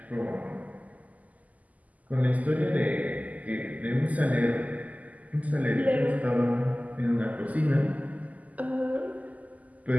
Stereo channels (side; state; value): left; late; 0.076 ms